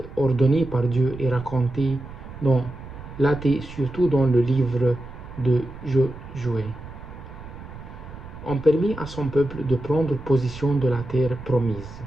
ordonnées par Dieu et racontées dans l'athée, surtout dans le livre de Josué, ont permis à son peuple de prendre possession de la terre promise.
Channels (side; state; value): right; noise; rumble, 14 dB below the sound